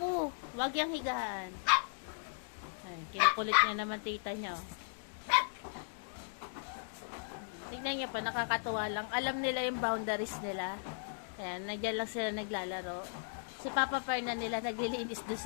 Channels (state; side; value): silent; right; digital silence